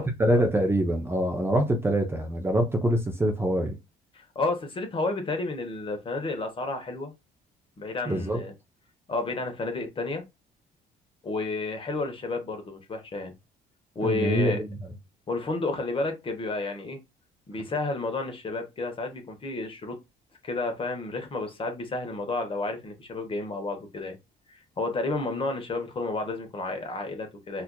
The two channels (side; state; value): both; normal; correlation 0.63